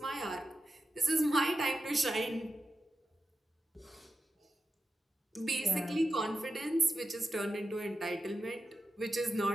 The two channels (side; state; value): both; normal; correlation 0.91